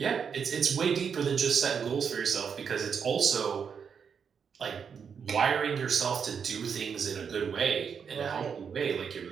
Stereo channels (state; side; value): quieter; left; 6.7 dB